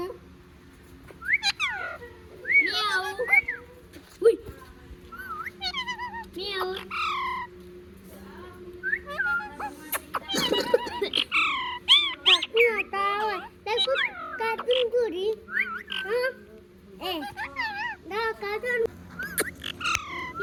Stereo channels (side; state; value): both; identical; correlation 1.00